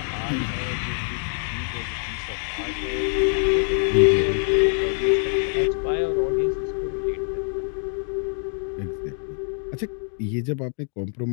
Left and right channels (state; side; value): silent; right; 57 dB below the other